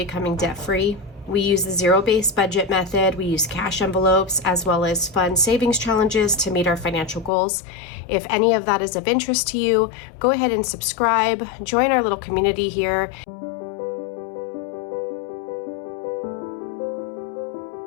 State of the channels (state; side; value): drops out; right; at 7.3 s